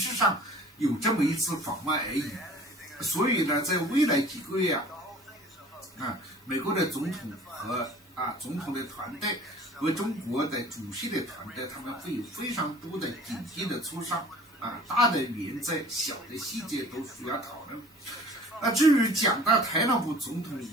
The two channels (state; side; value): normal; both; correlation 0.47